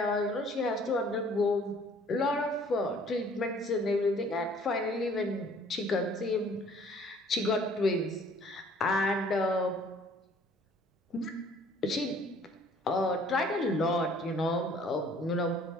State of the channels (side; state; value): both; normal; correlation 0.56